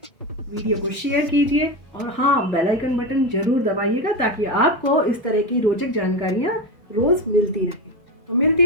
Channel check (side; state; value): both; normal; correlation 0.17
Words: वीडियो को शेयर कीजिए और हाँ, बेल आइकन बटन ज़रूर दबाइएगा ताकि आपको इस तरह की रोचक जानकारियाँ रोज़ मिलती रहें। तो मिलती